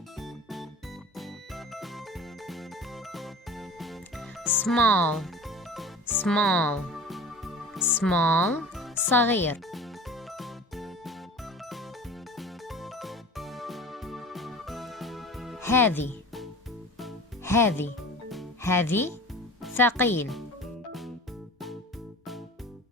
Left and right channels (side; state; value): both; normal; correlation 0.39